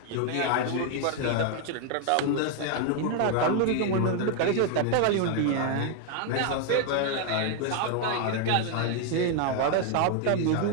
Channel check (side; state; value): both; different; correlation 0.00